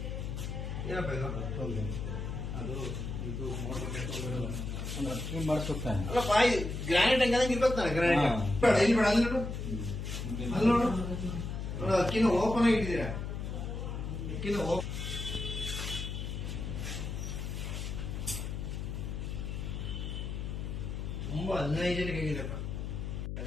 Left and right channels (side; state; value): left; noise; hum, 4 dB below the sound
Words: ಏನಪ್ಪ ಇದು? ಅದು ಇದು ಮಾಡಿಸುತ್ತಾನೆ. ಅಲ್ಲಪ್ಪ, ಗ್ರಾನೈಟ್ ಹಂಗಂಗೆ ಇರ್ಬೇಕು ತಾನೆ ಗ್ರಾನೈಟ್. ಬೇಡ ಇಲ್ಲಿ ಬೇಡ, ಅಲ್ಲಿ ನೋಡು, ಅಲ್ಲಿ ನೋಡು ನೋಡು. ಅಕ್ಕಿನ ಓಪನ್ ಆಗಿ ಇಟ್ಟಿದ್ದೀರಾ. ಅಕ್ಕಿನ ತುಂಬಾ ಹೈಜೆನಿಕ್ ಆಗಿದೆಪ್ಪ.